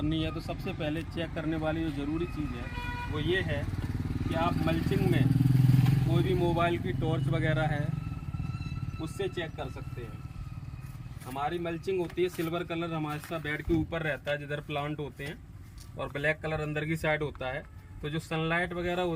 है तो सबसे पहले चेक करने वाली जो ज़रूरी चीज़ है वो ये है कि आप मल्चिंग में कोई भी मोबाइल की टॉर्च वगैरह है उससे चेक कर सकते हैं। हमारी मल्चिंग होती है सिल्वर कलर, हमारे साथ बेड के ऊपर रहता है जिधर प्लांट होते हैं, और ब्लैक कलर अंदर की साइड होता है। तो जो सनलाइट वगैरह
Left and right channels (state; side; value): identical; both; correlation 1.00